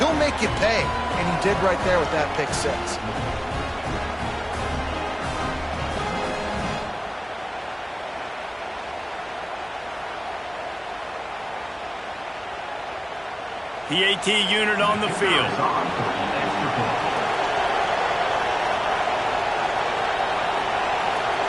make you pay, and he did right there with that pick 6. The AT unit on the field.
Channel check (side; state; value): both; identical; correlation 1.00